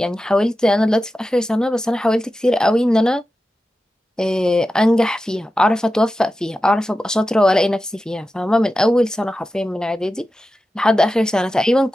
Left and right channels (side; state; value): both; normal; correlation 0.93